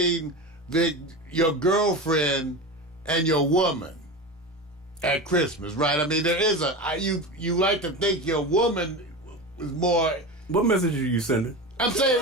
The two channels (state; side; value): normal; both; correlation 0.25